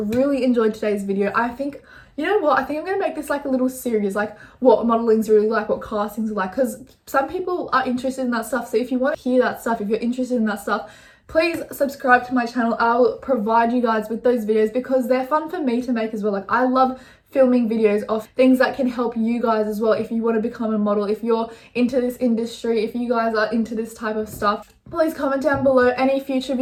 enjoyed today's video. I think, you know what, I think I'm going to make this like a little series, like what modeling's really like, what castings are like, because some people are interested in that stuff. So if you want to hear that stuff, if you're interested in that stuff, please subscribe to my channel. I'll provide you guys with those videos because they're fun for me to make as well. Like, I love filming videos of things that can help you guys as well if you want to become a model, if you're into this industry, if you guys are into this type of stuff. Please comment down below any future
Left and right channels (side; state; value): both; identical; correlation 1.00